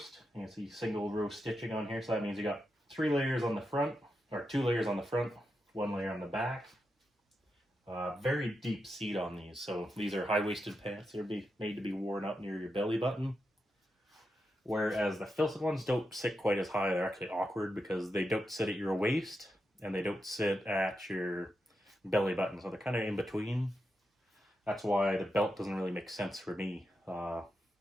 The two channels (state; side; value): normal; both; correlation 0.86